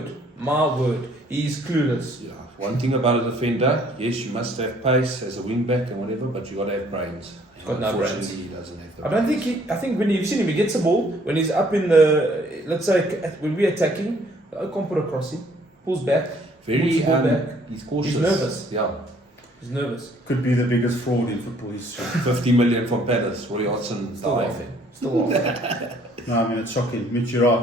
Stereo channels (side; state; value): both; normal; correlation 0.61